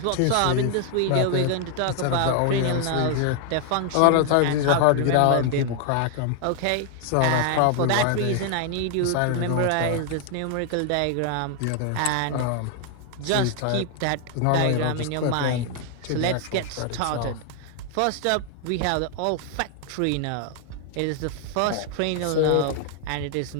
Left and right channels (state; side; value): different; both; correlation 0.00